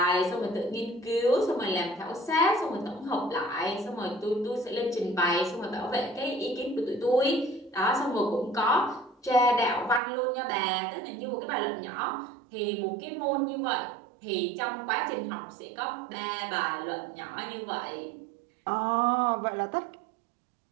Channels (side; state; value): left; drops out; at 10.0 s